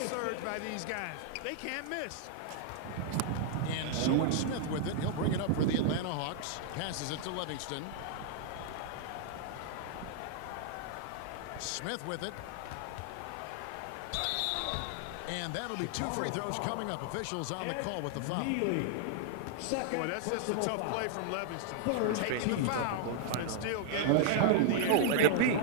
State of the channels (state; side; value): different; both; correlation -0.01